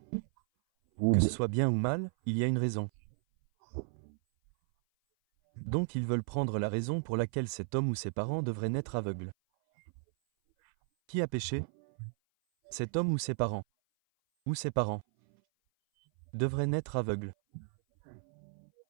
Que ce soit bien ou mal, il y a une raison. Donc ils veulent prendre la raison pour laquelle cet homme ou ses parents devraient naître aveugles. Qui a péché? Cet homme ou ses parents? Ou ses parents devraient naître aveugles.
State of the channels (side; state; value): left; silent; 55 dB below the other